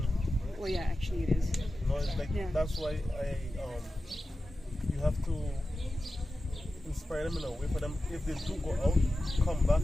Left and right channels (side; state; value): both; normal; correlation 0.93